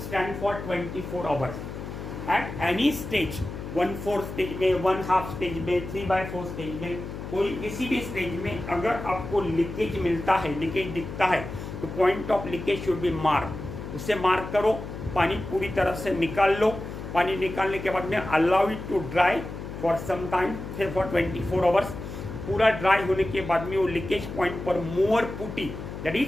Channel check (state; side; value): noise; left; hum, 9 dB below the sound